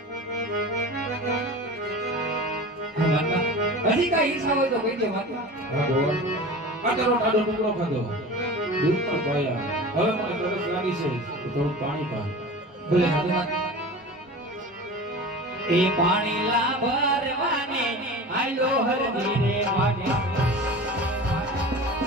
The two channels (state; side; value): normal; both; correlation 0.35